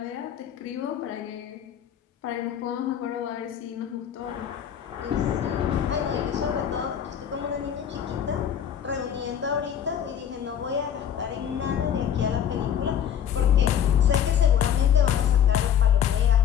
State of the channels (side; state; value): right; quieter; 9.2 dB